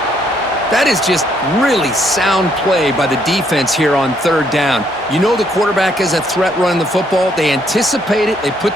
That is just really sound play by the defense here on 3rd down. You know the quarterback is a threat running the football. They anticipate it. They put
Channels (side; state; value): both; normal; correlation 0.70